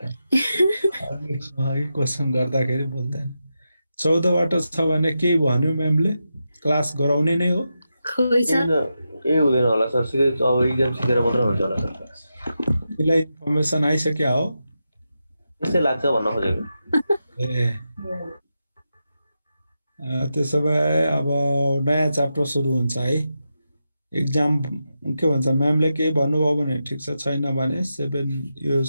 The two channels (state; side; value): inverted; both; correlation -0.88